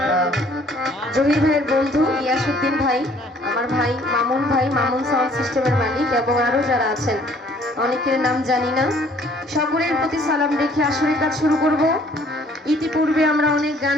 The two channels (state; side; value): normal; both; correlation 0.58